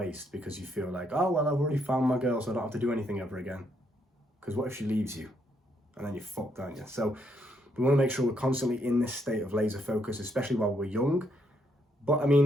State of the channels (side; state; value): both; normal; correlation 0.74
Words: because you feel like, oh well, I've already found my girl, so I don't have to do anything ever again. Because what if she leaves you? And then you're fucked, aren't you? So we want to make sure we're constantly in this state of laser focus, especially while we're young. But I